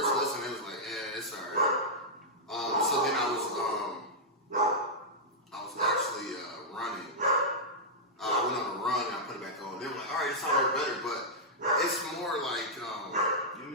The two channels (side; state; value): both; normal; correlation -0.09